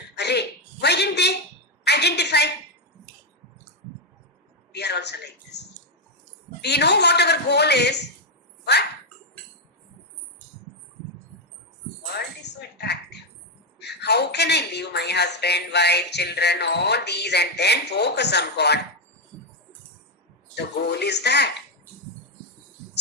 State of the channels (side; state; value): both; normal; correlation 0.03